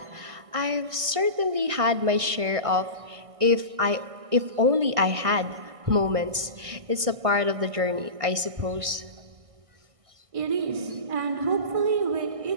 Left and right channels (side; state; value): left; late; 1.6 ms